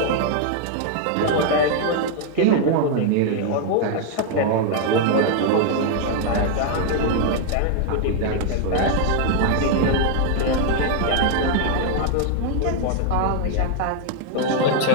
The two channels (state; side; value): different; both; correlation 0.00